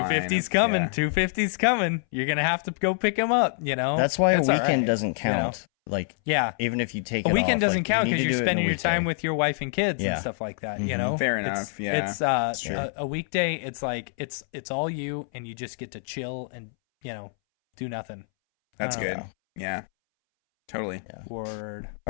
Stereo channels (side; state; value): right; silent; 61 dB below the other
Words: coming, 2:50's coming. You're going to have to go pick him up, That's why a weekend doesn't count. Like, even if you take a weekend off, doesn't count because you're spending your time with your wife and kids and stuff like that. Fair enough. It's a weekday. It's like it's all you, and you just get to chill and do nothing. That's good. Yeah, totally. Word.